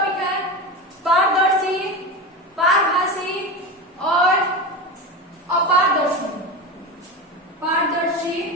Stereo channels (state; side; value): normal; both; correlation 0.23